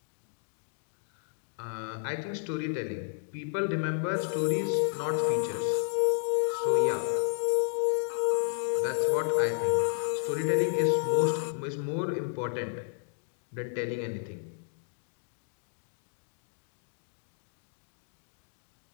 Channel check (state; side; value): silent; right; digital silence